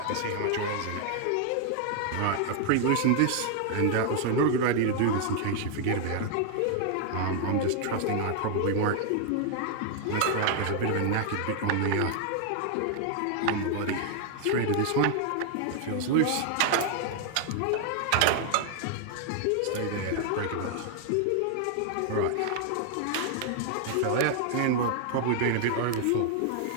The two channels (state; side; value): different; both; correlation 0.00